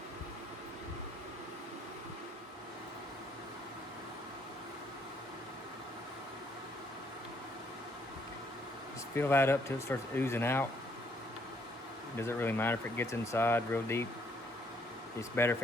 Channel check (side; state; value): both; normal; correlation 0.69